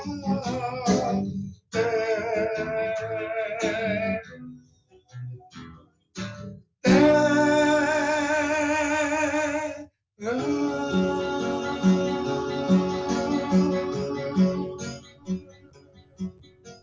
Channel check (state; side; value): identical; both; correlation 1.00